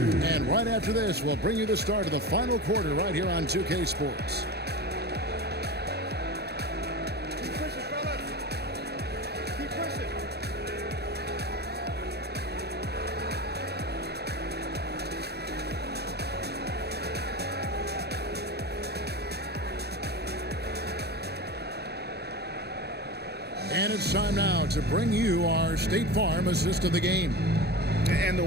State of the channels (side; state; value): left; late; 0.48 ms